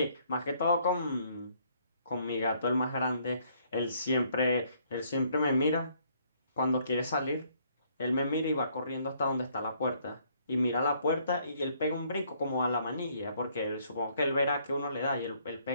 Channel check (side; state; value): both; inverted; correlation -0.66